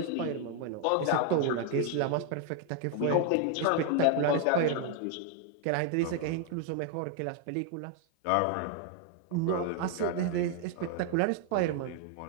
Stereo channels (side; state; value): both; different; correlation 0.01